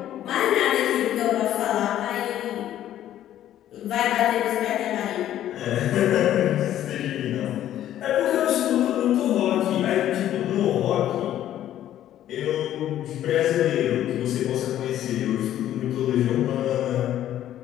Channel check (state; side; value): quieter; right; 12.0 dB